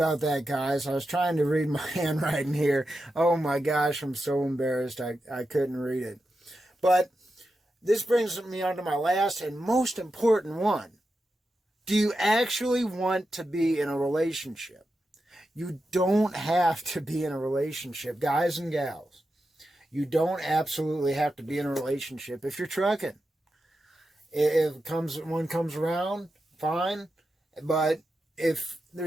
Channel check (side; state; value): both; normal; correlation 0.89